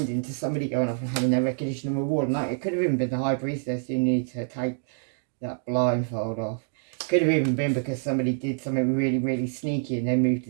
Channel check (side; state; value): left; silent; digital silence